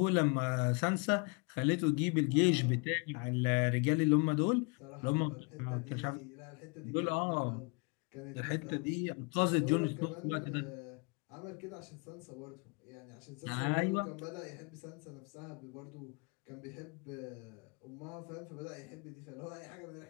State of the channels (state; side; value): quieter; right; 32.7 dB